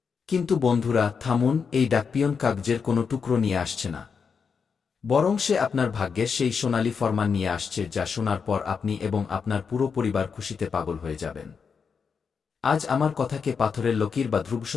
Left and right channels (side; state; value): right; quieter; 5.9 dB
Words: কিন্তু বন্ধুরা থামুন, এই ডাকপিয়ন কাগজের কোনো টুকরো নিয়ে আসছে না, বরং সে আপনার ভাগ্যের সেই সোনালী ফরমান নিয়ে আসছে, যা শোনার পর আপনি এবং আপনার পুরো পরিবার খুশিতে পাগল হয়ে যাবেন। আজ আমার কথাকে পাথরের লকির বা